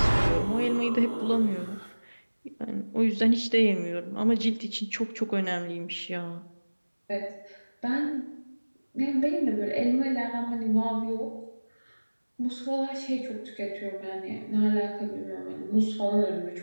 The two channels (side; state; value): both; inverted; correlation -1.00